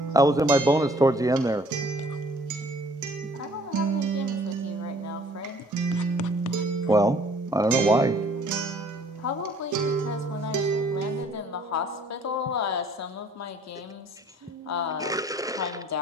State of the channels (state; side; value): normal; both; correlation 0.57